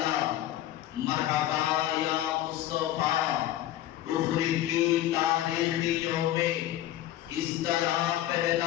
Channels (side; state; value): right; quieter; 13.4 dB